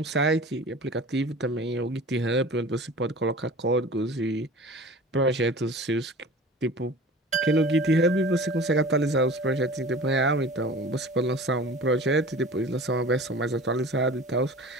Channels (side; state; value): both; normal; correlation 0.40